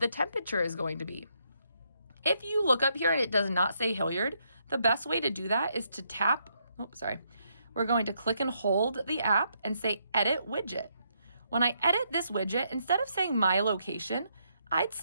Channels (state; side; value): inverted; both; correlation -0.76